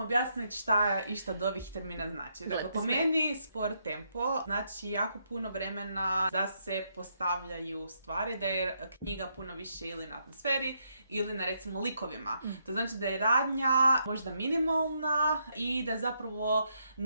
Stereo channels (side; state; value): both; inverted; correlation -0.77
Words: šta išta od ovih termina znači. Dakle, po meni spor tempo znači jako puno vremena da se postavljaju stvari, da je knjiga puno više ili na atmosferi ili na recimo likovima. To znači da je radnja možda minimalna i da zapravo